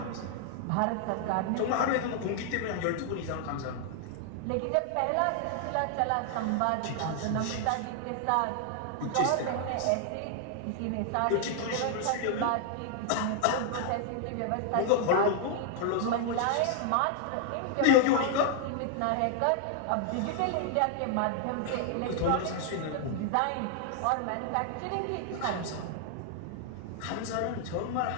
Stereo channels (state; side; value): different; both; correlation 0.00